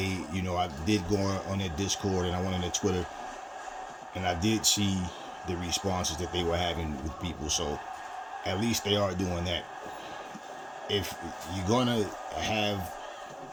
did go on their Discord and I went on their Twitter, and I did see the responses that they were having with people. So at least they are doing that. If you're gonna have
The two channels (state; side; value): identical; both; correlation 1.00